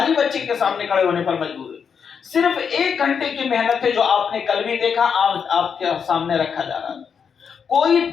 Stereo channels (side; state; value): right; quieter; 6.7 dB